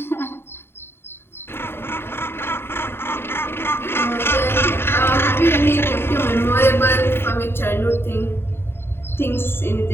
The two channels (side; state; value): right; late; 0.11 ms